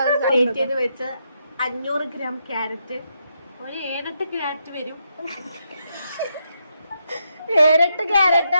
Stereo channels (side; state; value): both; inverted; correlation -0.80